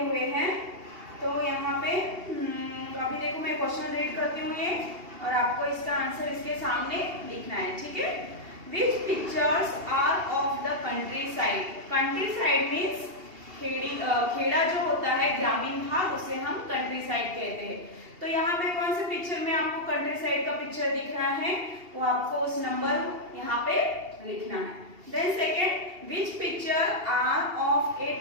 हैं. तो यहाँ पे अभी देखो मैं क्वेश्चन रीड करती हूँ ये, और आपको इसका आंसर इसके सामने लिखना है. ठीक है, which pictures are of the countryside. Countryside means खेड़ा जो होता है, ग्रामीण भाग, उसे हम कंट्री साइड कहते हैं. तो यहाँ पे कौन से पिक्चर में आपको कंट्री साइड का पिक्चर दिख रहा है, वो आपको उस नंबर यहाँ पे लिखना है. Then second, which picture are of a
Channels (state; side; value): late; left; 2.8 ms